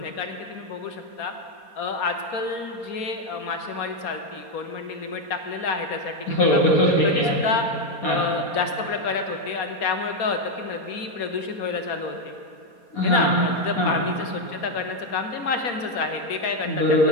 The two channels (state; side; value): late; right; 4.2 ms